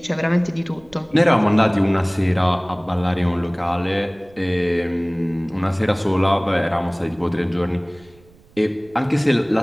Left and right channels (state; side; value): noise; right; rumble, 27 dB below the sound